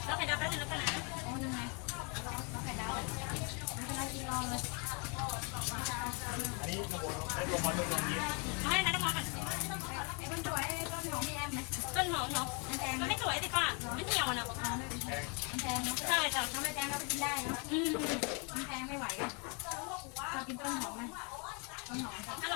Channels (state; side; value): quieter; right; 34.5 dB